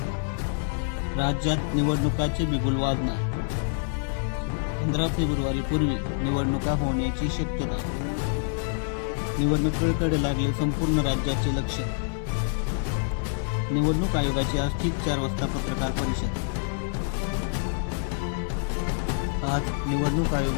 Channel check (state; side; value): silent; right; 60 dB below the other